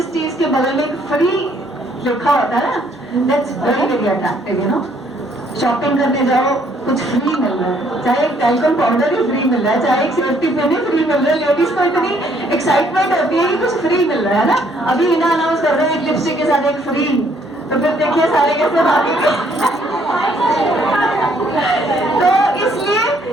चीज के बगल में फ्री लिखा होता है ना, that's very very attractive, you know. Shopping करने जाओ, कुछ फ्री मिल रहा है, चाहे एक टैल्कम पाउडर ही फ्री मिल रहा है, चाहे एक सेफ्टी पिन ही फ्री मिल रहा है। लेडीज को इतनी एक्साइटमेंट होती है कि कुछ फ्री मिल रहा है ना। अभी इना अनाउंस कर रहे हैं एक लिपस्टिक के साथ एक फ्री, तो फिर देखिए सारे कैसे भागेंगे। तो इसलिए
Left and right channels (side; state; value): both; normal; correlation 0.66